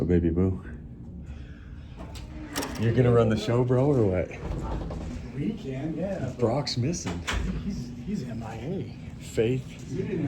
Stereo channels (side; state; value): both; identical; correlation 1.00